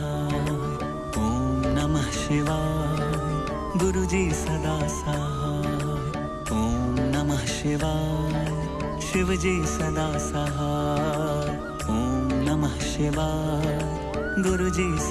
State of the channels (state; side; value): identical; both; correlation 1.00